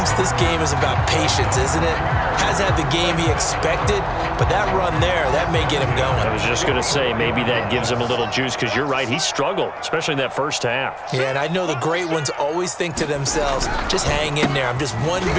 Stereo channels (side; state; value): both; identical; correlation 1.00